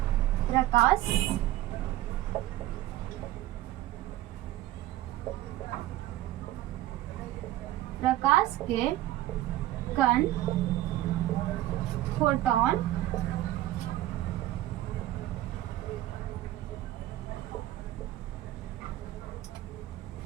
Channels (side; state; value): left; quieter; 14.9 dB